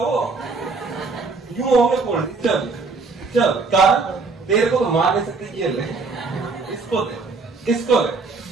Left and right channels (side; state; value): left; quieter; 4.2 dB